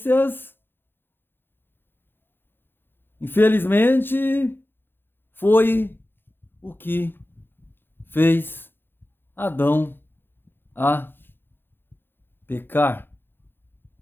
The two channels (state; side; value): late; right; 0.10 ms